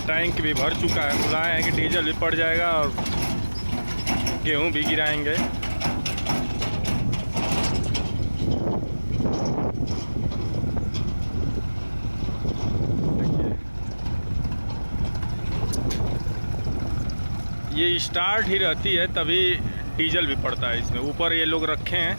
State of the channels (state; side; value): inverted; both; correlation -1.00